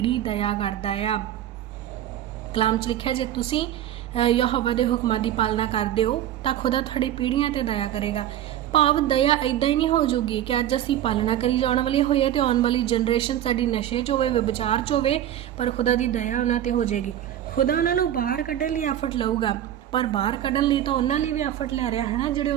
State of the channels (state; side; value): quieter; left; 11.7 dB